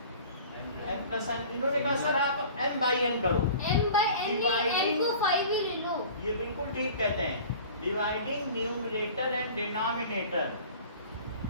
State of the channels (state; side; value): inverted; both; correlation -0.44